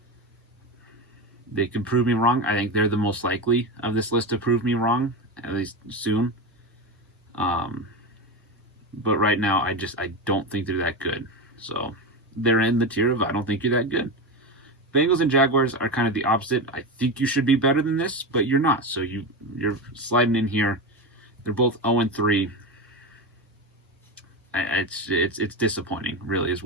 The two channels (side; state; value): both; normal; correlation 0.18